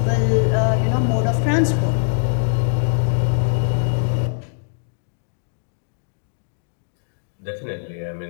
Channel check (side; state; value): right; silent; digital silence